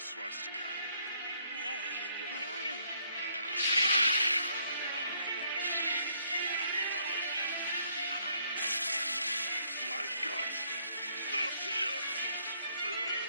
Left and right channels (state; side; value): inverted; both; correlation -0.69